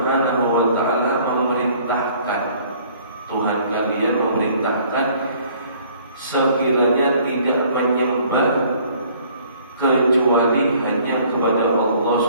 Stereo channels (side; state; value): both; inverted; correlation -0.57